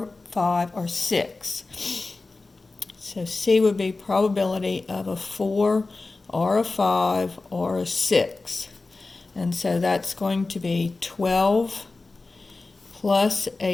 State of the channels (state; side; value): quieter; right; 3.5 dB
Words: 5, or 6. So C would be probability of a 4 or a 5 or a 6. And so that's going to be 12 plus